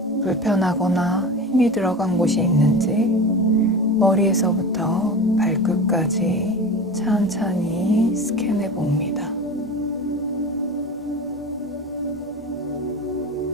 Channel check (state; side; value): normal; both; correlation 0.31